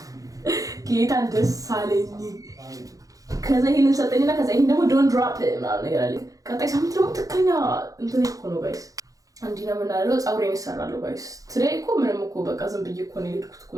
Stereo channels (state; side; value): late; left; 0.17 ms